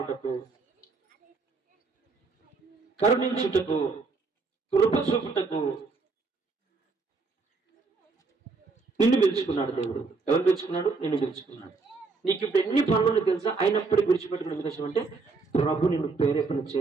కరుణించుటకు, కృప చూపుటకు నిన్ను పిలుచుకున్నాడు దేవుడు. ఎవరు పిలుచుకున్నాడు? నిన్ను పిలుచుకున్నాడు. నీకు ఇప్పుడు ఎన్ని పనులు తెలుసా? అయినప్పటికీ విడిచిపెట్టుకునే ఉద్దేశం అంటే ప్రభు నిన్ను ప్రేరేపణ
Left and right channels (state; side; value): quieter; left; 4.2 dB